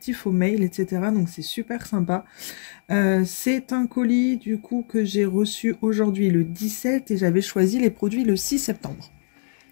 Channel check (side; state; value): right; silent; digital silence